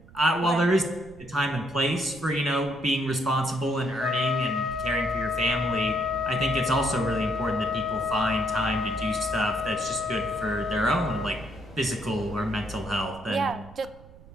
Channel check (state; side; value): noise; right; rumble, 21 dB below the sound